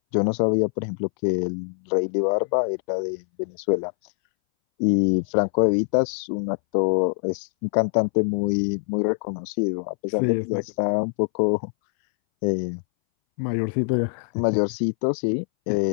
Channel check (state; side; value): silent; right; 61 dB below the other